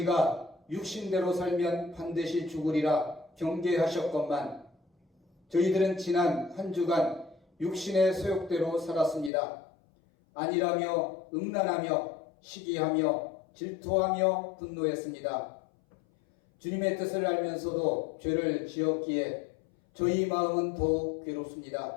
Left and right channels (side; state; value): right; drops out; at 9.3 s